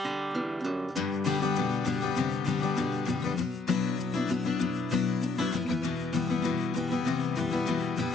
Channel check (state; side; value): quieter; right; 3.5 dB